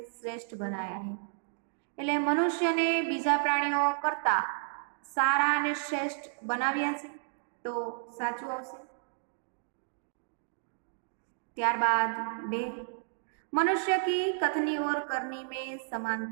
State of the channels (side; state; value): left; silent; digital silence